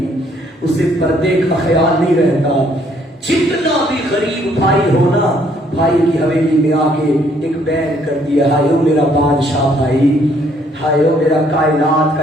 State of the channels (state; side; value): normal; both; correlation 0.65